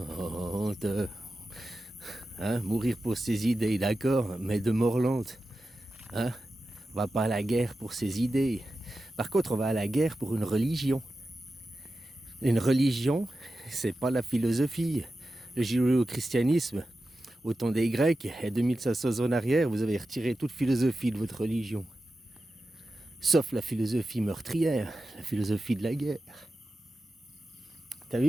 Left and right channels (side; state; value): both; normal; correlation 0.92